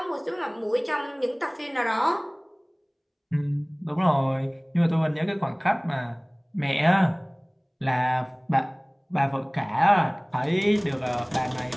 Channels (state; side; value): identical; both; correlation 1.00